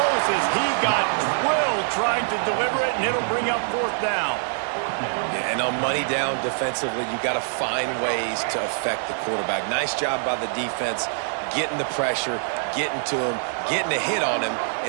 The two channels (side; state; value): left; silent; 62 dB below the other